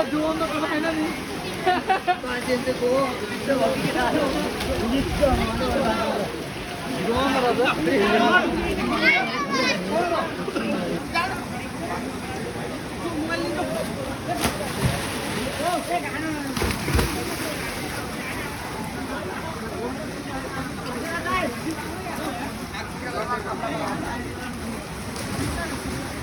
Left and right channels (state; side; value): identical; both; correlation 1.00